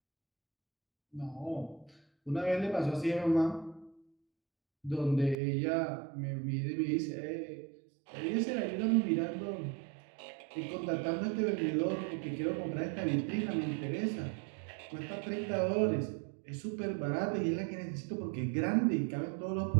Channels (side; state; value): left; drops out; at 5.4 s